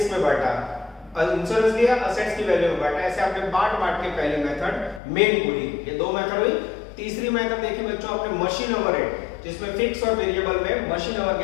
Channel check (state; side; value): drops out; right; at 5.0 s